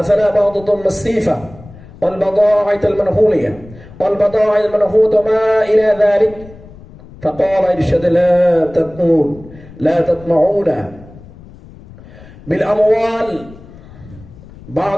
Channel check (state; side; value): noise; left; rumble, 20 dB below the sound